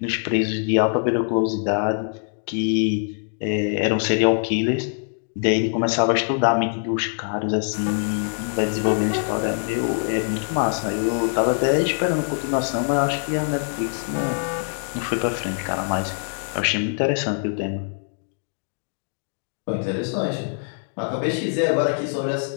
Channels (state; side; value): silent; right; 63 dB below the other